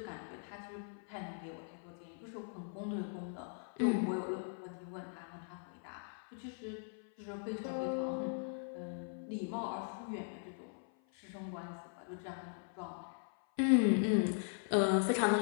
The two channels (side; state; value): right; silent; 51 dB below the other